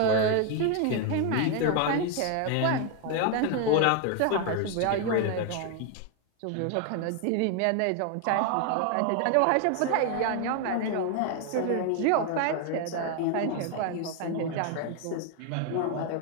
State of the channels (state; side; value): different; both; correlation 0.01